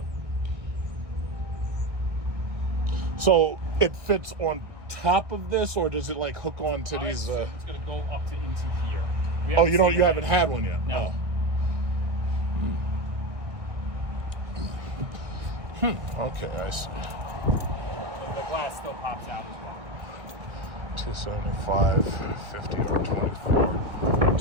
So it fits on top of this, or does it like hook on to these? It's going to go up to into here. You haven't had one yet? No. Okay, I see. The glass still pops out as well. 275, 50, or 24.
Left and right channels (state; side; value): late; left; 1.6 ms